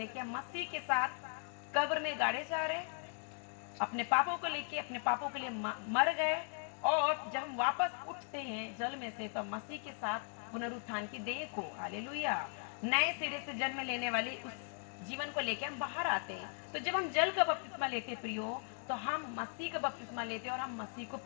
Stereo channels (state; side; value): silent; right; 52 dB below the other